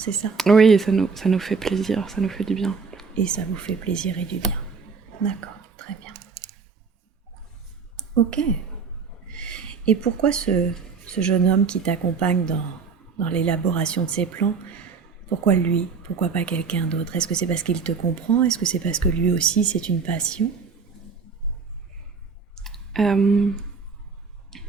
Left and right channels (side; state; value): left; quieter; 5.3 dB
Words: ça? Oui, et ça nous fait plaisir, ça nous fait du bien. Et ça vous fait plaisir et du bien. D'accord, très bien. Ok. Et pourquoi ce jeune homme qui t'accompagne dans l'élaboration de ces plans, pourquoi lui? Pourquoi pas quelqu'un d'autre? Est-ce que c'est parce qu'il te comprend? Est-ce que c'est parce que lui aussi c'est une passion? Je